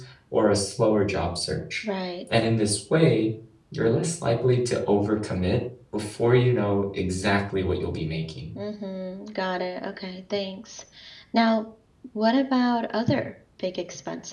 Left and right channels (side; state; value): both; identical; correlation 1.00